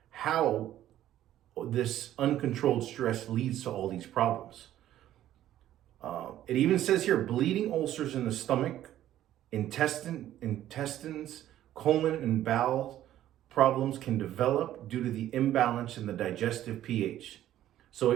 how this uncontrolled stress leads to all these problems. It even says here, bleeding ulcers in the stomach, intestines, colon, and bowel problems can develop due to the imbalance in the digestive pH. So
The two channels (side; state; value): left; quieter; 12.6 dB